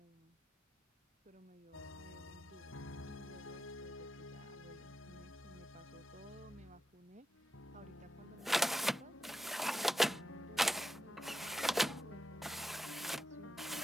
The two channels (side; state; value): both; normal; correlation 0.89